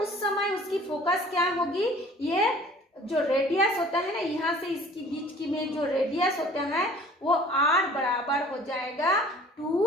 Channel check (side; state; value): both; normal; correlation 0.50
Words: उस समय उसकी फोकस क्या होगी, ये जो रेडियस होता है ना, यहाँ से इसकी बीच की में जो रेडियस होता है वो r बराबर हो जाएगा